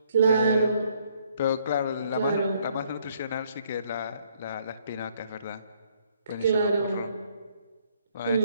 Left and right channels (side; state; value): both; inverted; correlation -0.67